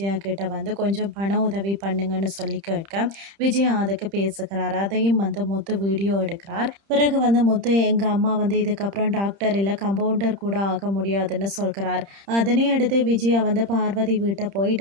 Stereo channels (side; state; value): left; late; 30 ms